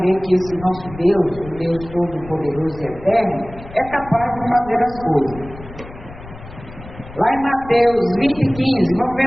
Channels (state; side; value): noise; left; rumble, 16 dB below the sound